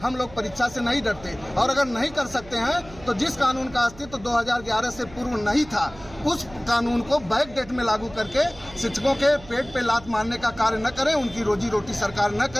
लोग परीक्षा से नहीं डरते और अगर नहीं कर सकते हैं तो जिस कानून का अस्तित्व 2011 से पूर्व नहीं था उस कानून को बैक डेट में लागू करके शिक्षकों के पेट पे लात मारने का कार्य न करें, उनकी रोजी रोटी सरकार न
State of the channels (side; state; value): right; noise; hum, 19 dB below the sound